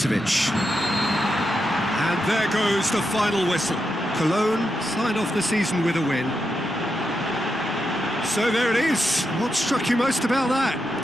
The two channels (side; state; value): both; normal; correlation 0.86